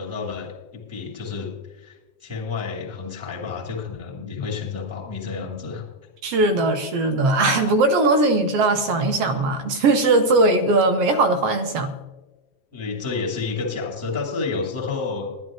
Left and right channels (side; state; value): left; late; 7.6 ms